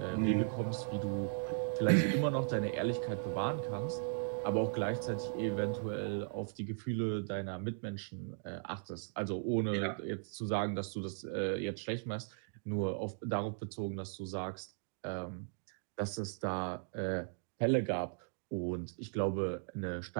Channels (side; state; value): left; silent; digital silence